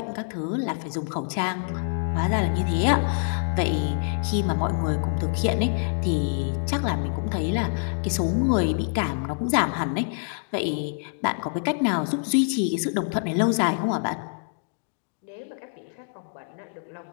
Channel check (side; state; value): right; silent; digital silence